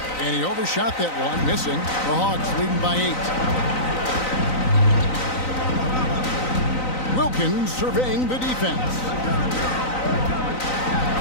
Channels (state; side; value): late; right; 3.9 ms